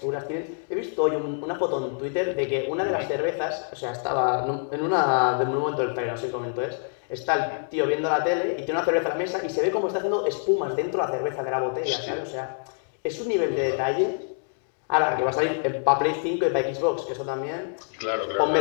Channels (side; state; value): right; silent; 61 dB below the other